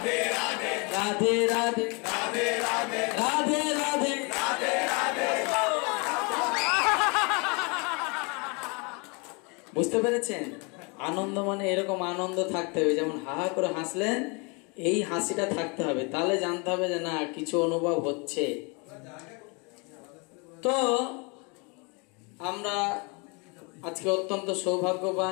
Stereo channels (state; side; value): quieter; right; 31.5 dB